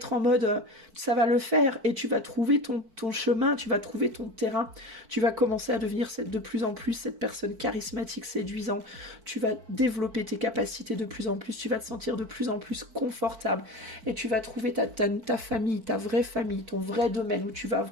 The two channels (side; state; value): left; late; 4.5 ms